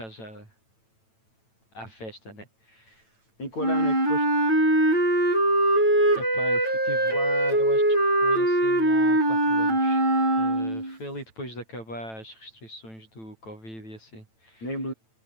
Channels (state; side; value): late; right; 9.0 ms